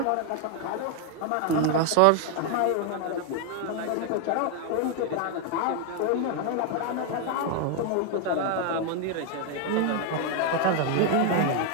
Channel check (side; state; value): both; different; correlation 0.01